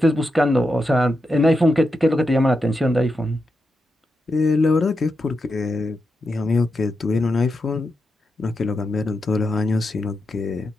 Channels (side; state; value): both; normal; correlation 0.87